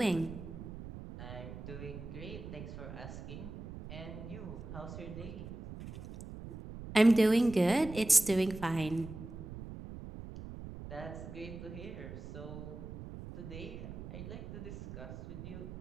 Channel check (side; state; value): right; noise; rumble, 10 dB below the sound